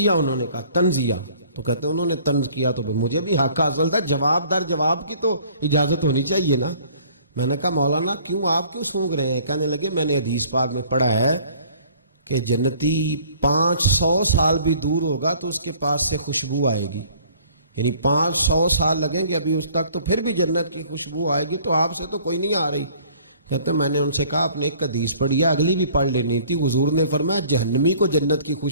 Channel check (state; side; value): inverted; both; correlation -0.54